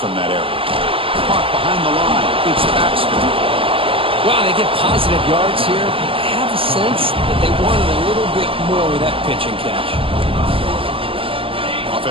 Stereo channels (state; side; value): late; left; 0.26 ms